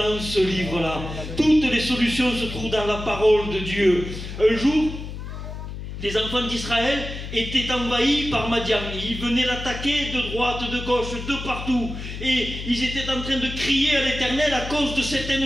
ce livre-là. Toutes les solutions se trouvent dans la parole de Dieu. Un jour, les enfants d'Israël étaient envahis par Madian. Ils venaient l'attaquer de droite, de gauche, de partout. Et ils étaient en train de crier à l'Éternel à cause de cet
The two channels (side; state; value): left; noise; hum, 8 dB below the sound